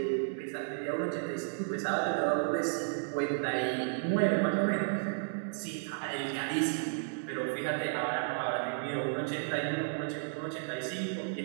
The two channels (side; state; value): left; silent; digital silence